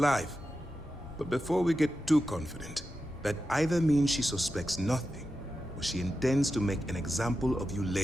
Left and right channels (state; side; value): normal; both; correlation 0.91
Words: But before we get too confident, that either means she suspects nothing, or she intends to make an example of you